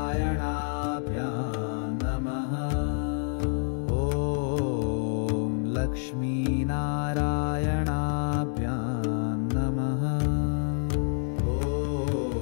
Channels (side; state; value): right; silent; 59 dB below the other